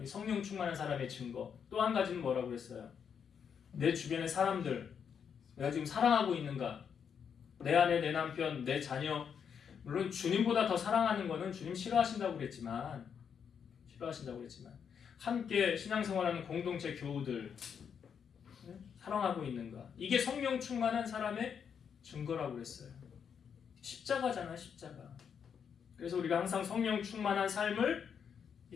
성령 충만한 사람의 증거. 또 한 가지는 뭐라고 했어요? 내 주변의 사람들 내가 지금 사랑하고 있는가? 내 아내, 내 남편, 내 자녀 물론 주님보다 더 사랑하는 거는 주님 싫어하신다고 그랬지만 함께 신앙생활하는 공동체 교우들 사랑하고 있는가? 이게 성령 충만한 사람의 증거라고 그랬어요. 십자가잖아, 십자가. 그래서 우리가 항상 성령 충만한 삶을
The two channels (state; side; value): quieter; right; 7.3 dB